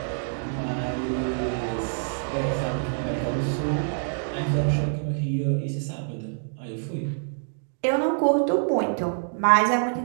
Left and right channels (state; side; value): silent; left; digital silence